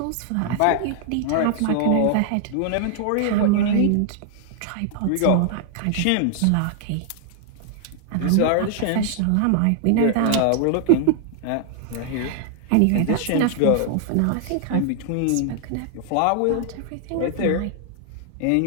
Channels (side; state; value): both; different; correlation 0.00